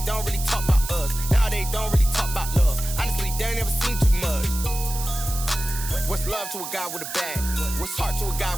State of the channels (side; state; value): right; noise; hiss, 8 dB below the sound